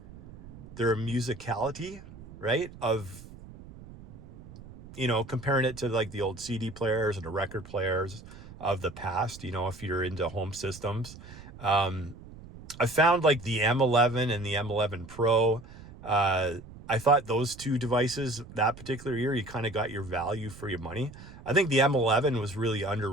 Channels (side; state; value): right; noise; rumble, 17 dB below the sound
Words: their musicality, right? Of, comparing it to the old CD players and the record players of the past, if you're into home systems. I found the M11 and the M11 Pro, I thought those two devices that particular year, you kind of got your value for your money. I think the M11 was really